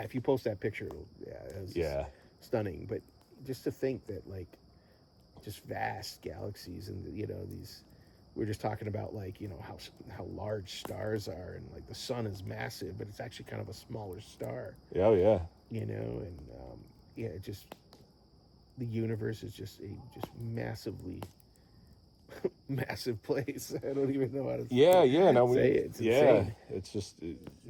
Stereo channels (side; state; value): both; identical; correlation 1.00